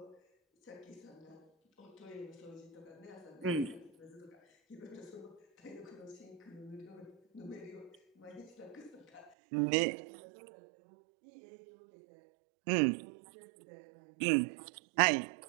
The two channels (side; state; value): left; drops out; at 9.3 s